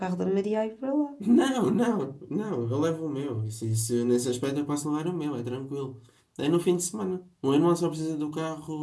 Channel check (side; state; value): both; identical; correlation 1.00